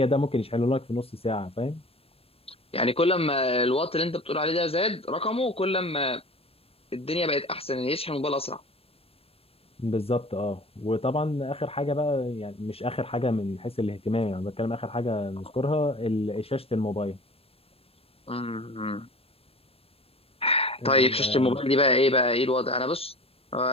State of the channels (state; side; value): late; right; 0.28 ms